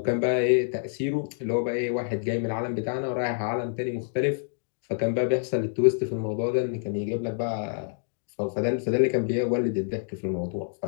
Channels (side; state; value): right; silent; digital silence